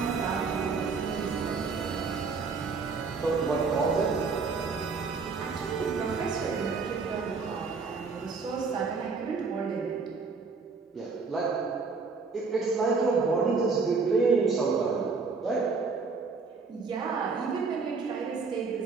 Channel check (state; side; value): quieter; left; 4.6 dB